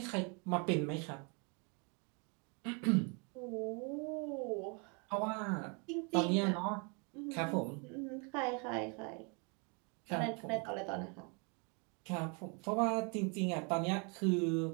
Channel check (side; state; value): left; quieter; 34.2 dB